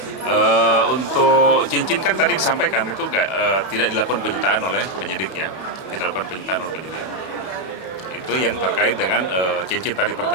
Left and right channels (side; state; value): right; late; 31 ms